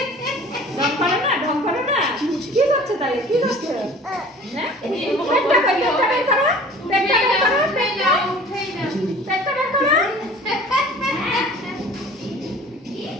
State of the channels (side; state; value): both; normal; correlation 0.46